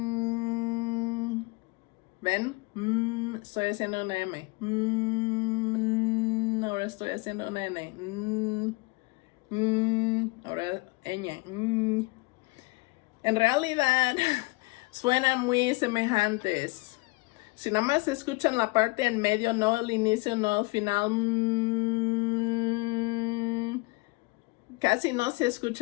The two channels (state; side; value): quieter; right; 25.4 dB